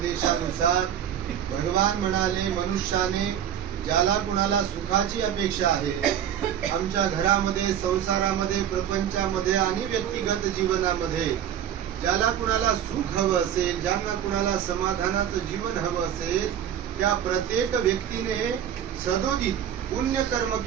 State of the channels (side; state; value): left; quieter; 9.9 dB